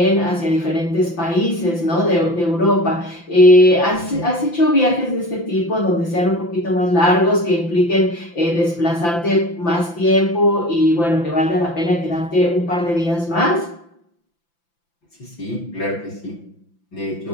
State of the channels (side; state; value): right; late; 5.9 ms